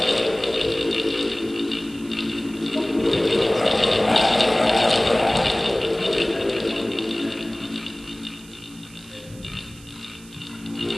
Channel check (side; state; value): right; noise; hiss, 22 dB below the sound